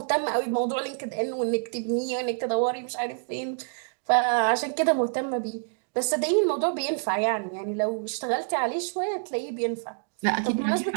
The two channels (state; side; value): silent; left; digital silence